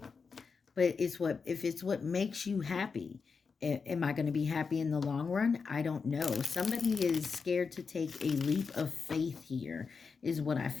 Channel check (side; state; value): right; quieter; 5.2 dB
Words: But it's what, if it's what makes you happy, am I going to be happy in the long run? I don't know. Somebody is scared to take a leap of faith here, is what I